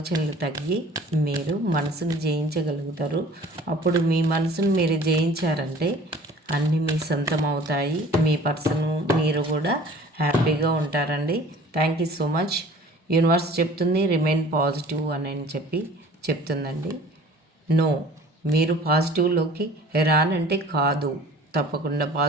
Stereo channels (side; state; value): both; normal; correlation 0.48